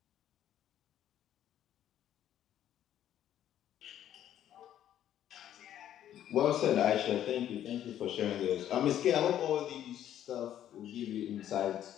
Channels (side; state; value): right; quieter; 11.1 dB